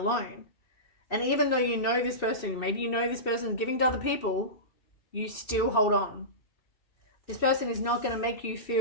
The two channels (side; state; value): right; late; 2.7 ms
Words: And even though you know this person, maybe you know this person is giving to other people, you still hold on. This person is not going to make you